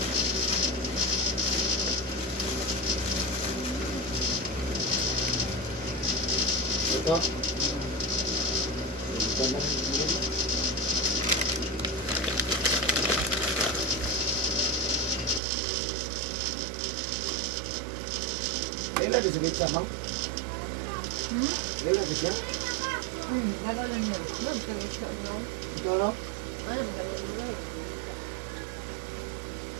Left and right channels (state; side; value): drops out; left; at 15.4 s